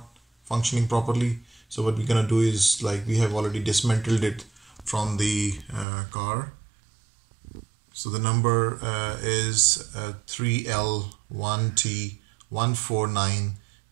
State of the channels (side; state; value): left; drops out; at 5.9 s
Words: functioning properly. So what we're gonna do is, like, we have already dismantled it from the car. So the number is